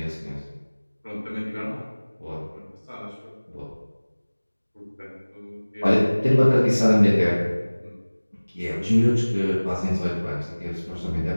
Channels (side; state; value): both; inverted; correlation -1.00